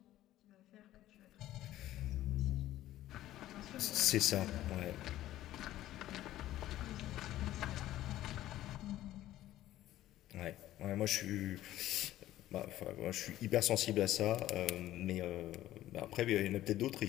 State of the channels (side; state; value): right; quieter; 14.2 dB